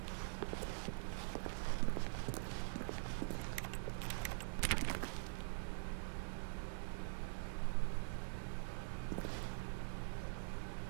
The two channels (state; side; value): silent; left; digital silence